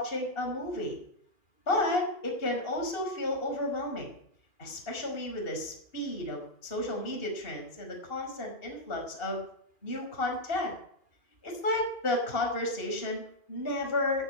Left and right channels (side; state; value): right; late; 2.7 ms